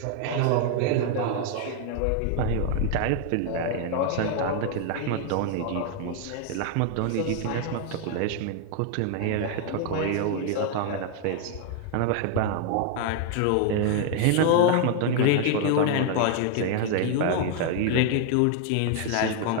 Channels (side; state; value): both; different; correlation 0.00